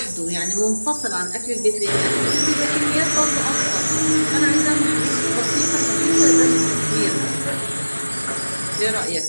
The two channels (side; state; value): both; inverted; correlation -1.00